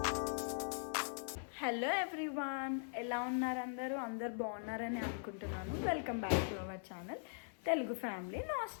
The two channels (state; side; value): silent; right; 50 dB below the other